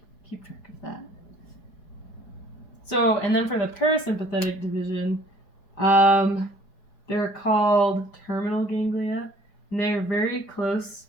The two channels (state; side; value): late; right; 4.7 ms